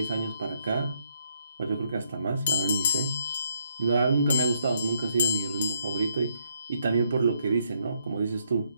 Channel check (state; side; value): inverted; both; correlation -0.73